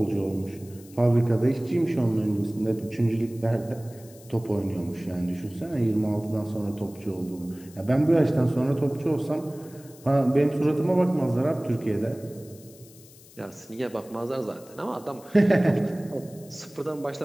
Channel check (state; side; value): noise; left; hiss, 23 dB below the sound